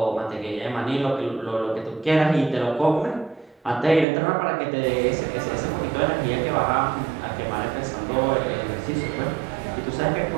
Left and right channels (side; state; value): left; drops out; at 4.0 s